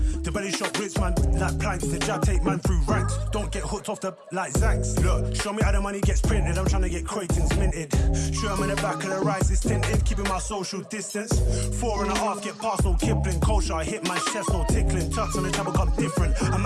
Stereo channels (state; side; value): identical; both; correlation 1.00